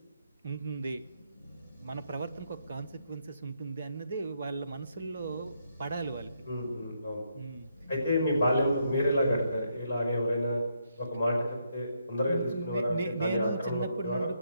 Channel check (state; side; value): inverted; both; correlation -0.77